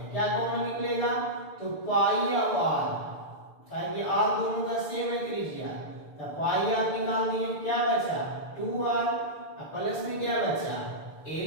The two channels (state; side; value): late; right; 6.7 ms